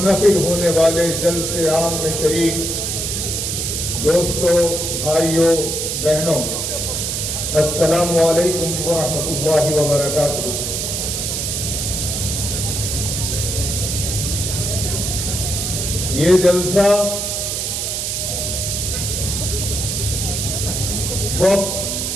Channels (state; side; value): noise; right; hiss, 1 dB below the sound